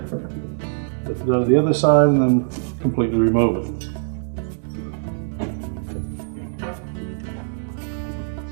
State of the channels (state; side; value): silent; left; digital silence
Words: lift it out of the other side, and then completely remove it.